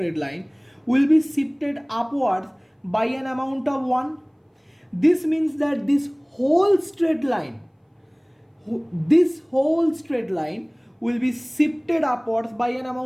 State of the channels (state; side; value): identical; both; correlation 1.00